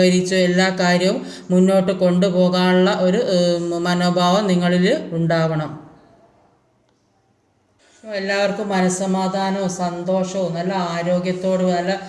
എല്ലാ കാര്യവും മുന്നോട്ട് കൊണ്ടുപോകാനുള്ള ഒരു മനോഭാവം നിങ്ങളിൽ ഉണ്ടാവണം. എല്ലാവർക്കും മനസ്സമാധാനവും സന്തോഷവും നല്ല ആരോഗ്യത്തോടും, നല്ല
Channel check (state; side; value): identical; both; correlation 1.00